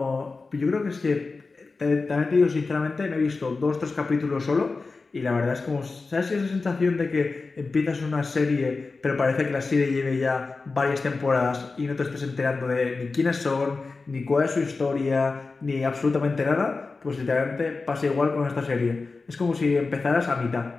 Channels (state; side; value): quieter; right; 4.0 dB